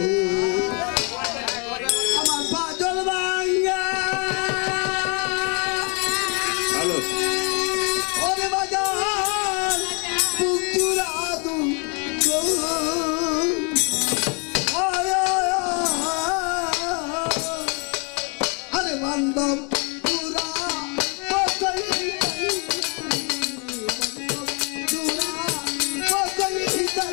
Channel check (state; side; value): quieter; right; 34.7 dB